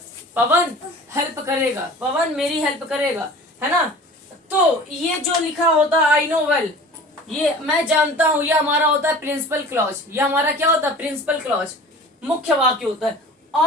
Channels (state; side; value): normal; both; correlation 0.42